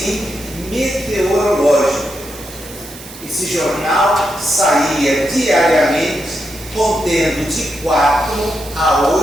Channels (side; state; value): right; noise; hiss, 16 dB below the sound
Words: meteorológico. Esse jornal saía diariamente contendo de 4 a